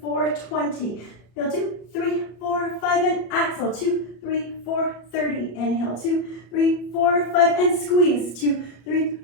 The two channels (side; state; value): right; late; 33 ms